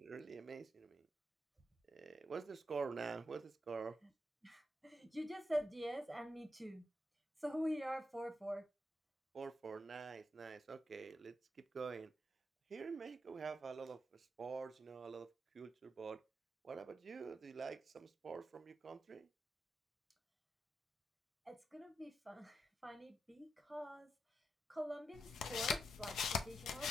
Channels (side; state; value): both; normal; correlation 0.85